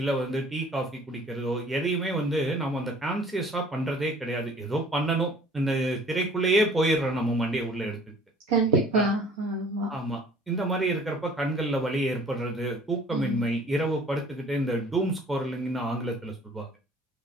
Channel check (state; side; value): normal; both; correlation 0.52